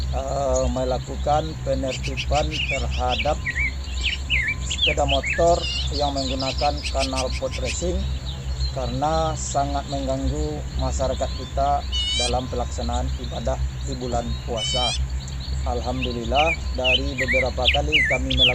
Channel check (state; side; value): identical; both; correlation 1.00